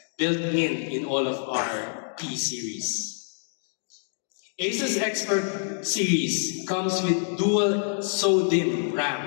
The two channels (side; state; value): right; silent; digital silence